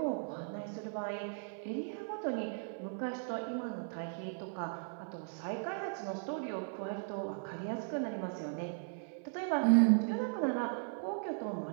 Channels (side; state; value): left; silent; 53 dB below the other